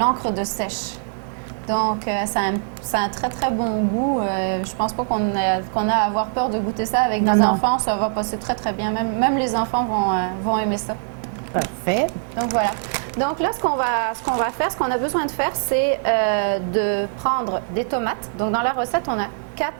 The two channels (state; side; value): silent; left; digital silence